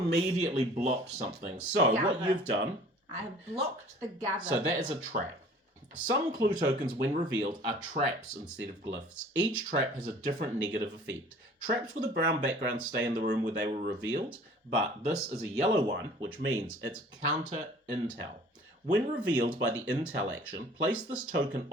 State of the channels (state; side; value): normal; both; correlation 0.49